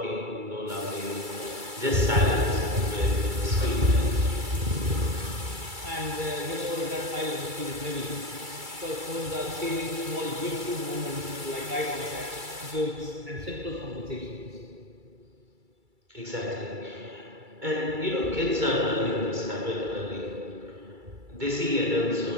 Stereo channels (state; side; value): late; left; 2.3 ms